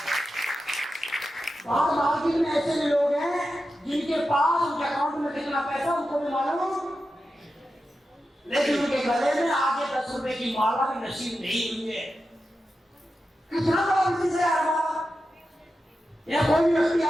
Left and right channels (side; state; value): both; normal; correlation 0.90